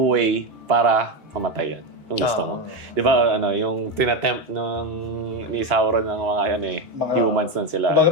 way para mamatay yan. Kung gusto mo. Di ba, yung tinatempt ni Sauron ng mga humans nun sila. Kumbaga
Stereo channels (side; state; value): both; normal; correlation 0.12